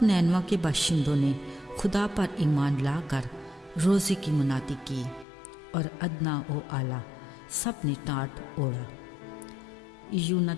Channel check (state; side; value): drops out; right; at 5.2 s